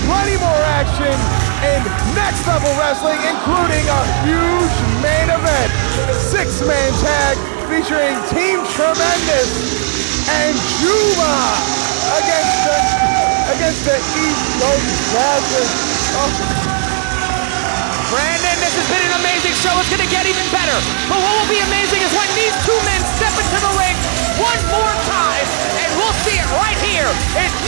plenty more action in Next Level Wrestling, including a huge main event. 6-man tag featuring Team Tremendous and Juba against the East Coast Masters. Oh. Brandon, this has been an amazing show. It's going to get even better. But what will be amazing is when these two men step into the ring one more time, and we'll see it right here in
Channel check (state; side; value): silent; left; digital silence